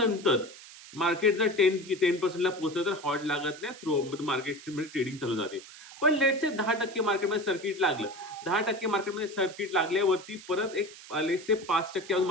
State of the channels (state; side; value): noise; right; hiss, 17 dB below the sound